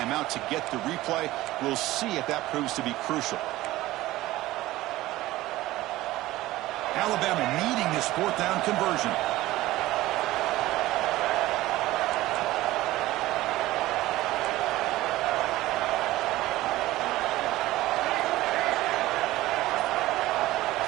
to get the replay. We'll see if that proves to be crucial. Alabama needing this fourth down conversion.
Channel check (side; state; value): left; quieter; 17.0 dB